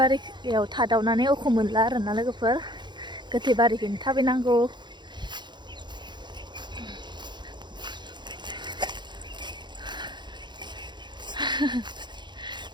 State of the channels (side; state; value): left; late; 0.22 ms